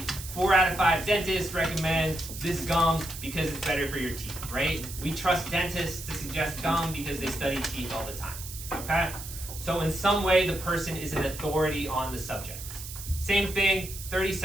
4 out of 5 dentists recommend this gum because it's better for your teeth, right? We trust dentists to suggest gum because they study teeth all the time, okay? So in some way, the person is an authority on the subject. Same thing, 30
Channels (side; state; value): right; noise; hiss, 11 dB below the sound